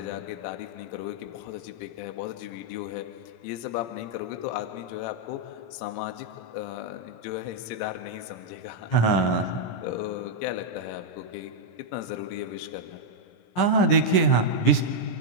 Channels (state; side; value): late; right; 17 ms